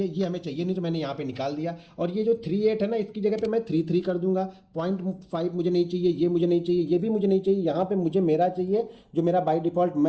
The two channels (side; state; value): both; identical; correlation 1.00